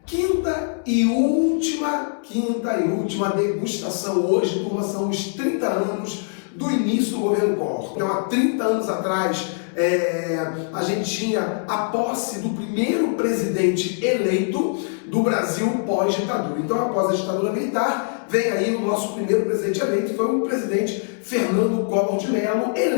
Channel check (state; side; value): silent; right; digital silence